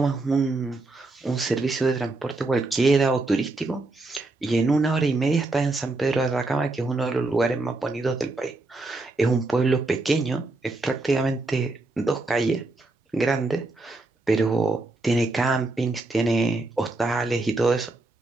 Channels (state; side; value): quieter; left; 3.1 dB